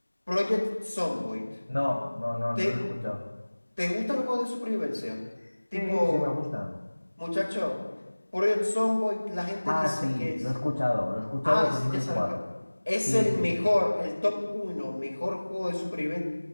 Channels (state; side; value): inverted; both; correlation -1.00